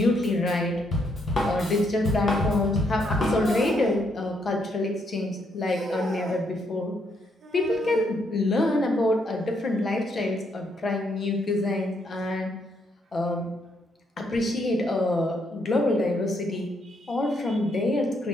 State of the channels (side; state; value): both; normal; correlation 0.74